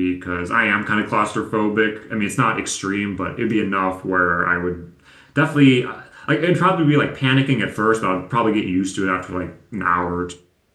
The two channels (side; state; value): both; identical; correlation 1.00